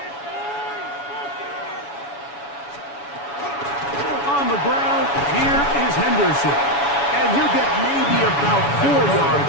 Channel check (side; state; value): right; late; 7.1 ms